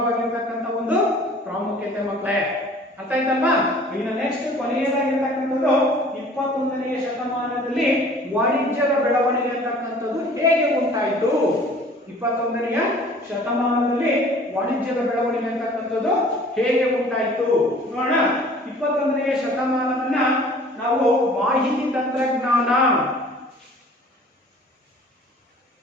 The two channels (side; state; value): both; normal; correlation 0.50